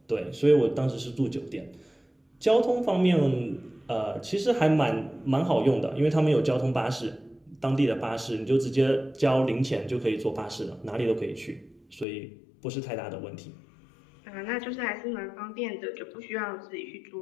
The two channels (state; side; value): drops out; right; at 12.1 s